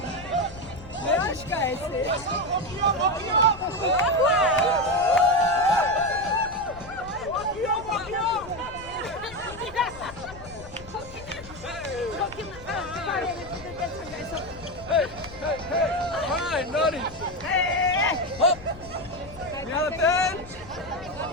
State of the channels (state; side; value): noise; left; rumble, 16 dB below the sound